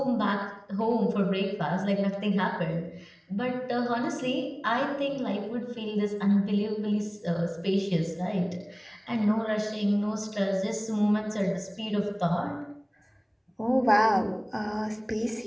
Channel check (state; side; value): identical; both; correlation 1.00